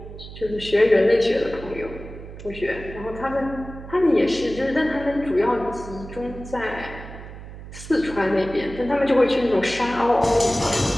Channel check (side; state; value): right; noise; hum, 13 dB below the sound